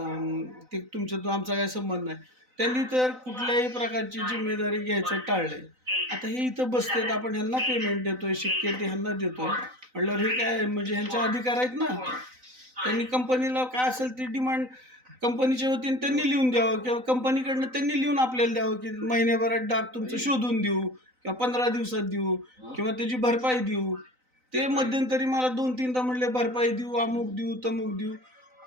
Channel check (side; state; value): left; late; 3.9 ms